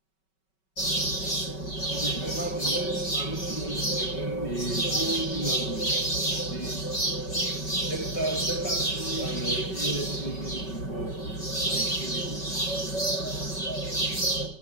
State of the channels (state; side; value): late; right; 5.3 ms